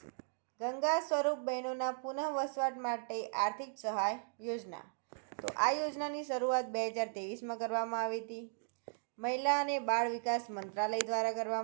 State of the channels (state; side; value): silent; left; digital silence